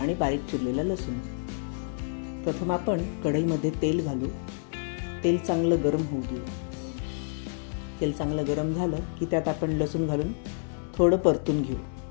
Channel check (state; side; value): silent; right; 59 dB below the other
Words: बारीक चिरलेला लसूण. प्रथम आपण कढईमध्ये तेल घालू. तेल चांगलं गरम होऊ देऊ. तेल चांगलं गरम झालं की त्यात आपण लसूण घालून थोडं परतून घेऊ.